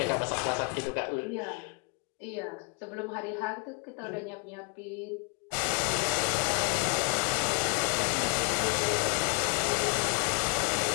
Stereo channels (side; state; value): right; quieter; 35.5 dB